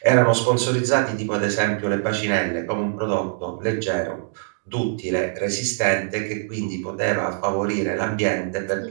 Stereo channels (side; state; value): left; silent; digital silence